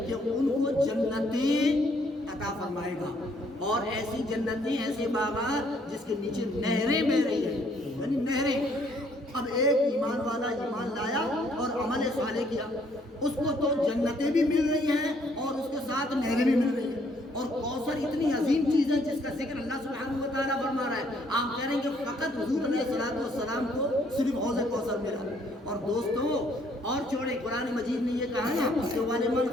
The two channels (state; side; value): normal; both; correlation 0.66